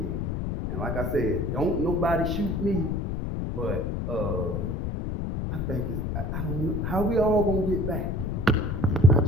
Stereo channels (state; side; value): noise; left; rumble, 2 dB below the sound